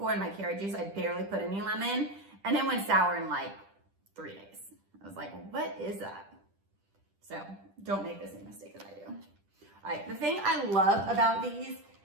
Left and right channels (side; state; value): left; late; 10 ms